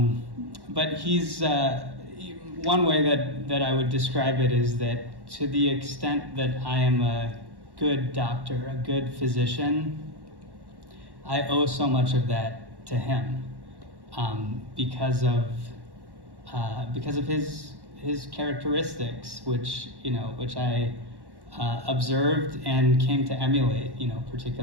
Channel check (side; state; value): left; late; 1.1 ms